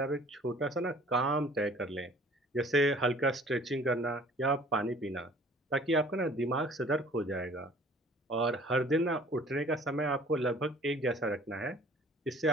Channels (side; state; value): both; normal; correlation 0.51